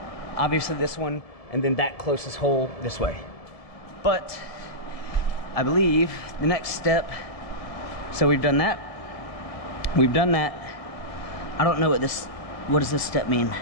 obviously this one, and then that closest hole this way. But I believe the next step, so we've done that. We've done that. I don't know what does this step mean?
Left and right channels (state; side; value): late; right; 1.7 ms